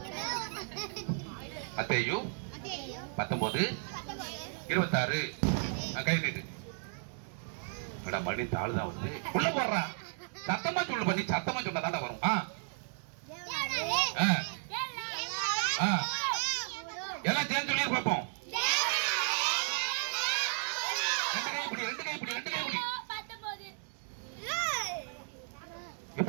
மத்தேயு 19:26. கை நீட்டு. மணி தாள் தான் வருது, உள்ள போடுறா. சத்தமா சொல்லு பண்ணி, சத்தமா சொன்னா தாண்டா வரும். எல்லாம் சேர்ந்து சொல்லி பார்ப்போம். ரெண்டு கை பிடி.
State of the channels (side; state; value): left; silent; 55 dB below the other